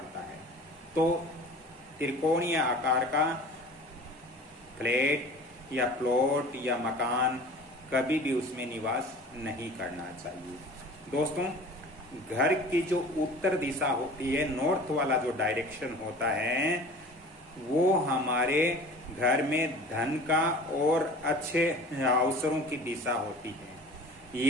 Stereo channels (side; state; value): both; normal; correlation 0.41